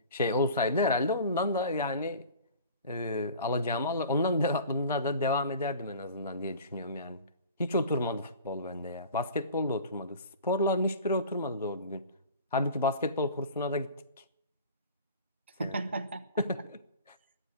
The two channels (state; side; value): inverted; both; correlation -0.41